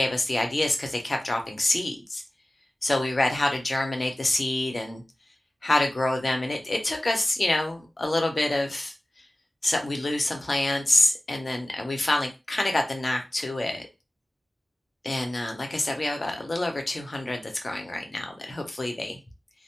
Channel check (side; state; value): both; normal; correlation 0.97